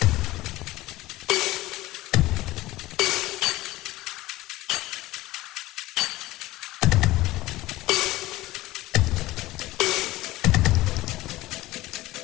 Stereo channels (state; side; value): quieter; right; 17.8 dB